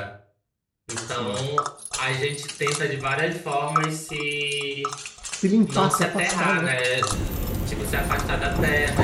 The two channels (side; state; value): both; identical; correlation 1.00